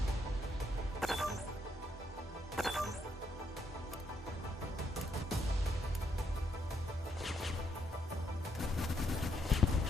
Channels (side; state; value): both; normal; correlation 0.76